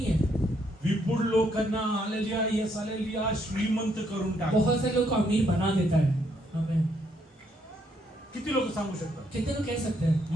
है. विपुल लोकांना आलेल्या यस आलेल्या श्रीमंत करून टाक. बहुत से लोग को अमीर बना देता है. हमें किती लोक सांगू शकतात कितने लोग कह सकते हैं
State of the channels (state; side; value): normal; both; correlation 0.73